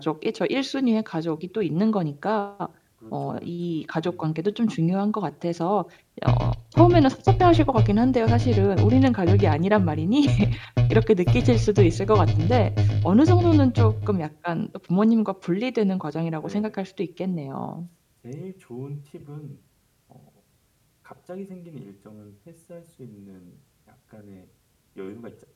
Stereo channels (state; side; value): identical; both; correlation 1.00